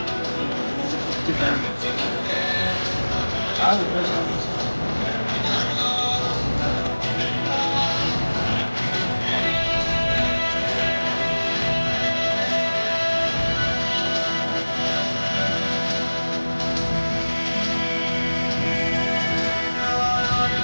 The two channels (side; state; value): both; inverted; correlation -1.00